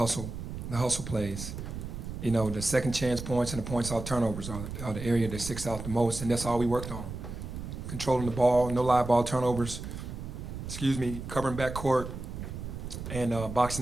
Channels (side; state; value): right; noise; rumble, 8 dB below the sound